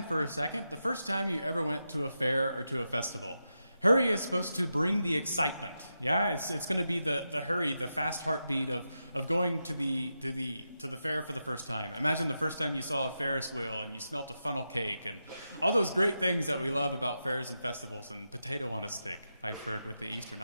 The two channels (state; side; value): inverted; both; correlation -0.88